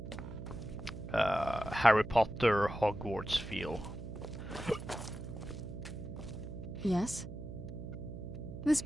Harry Potter Hogwarts feel. Yes? This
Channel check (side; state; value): right; noise; hum, 9 dB below the sound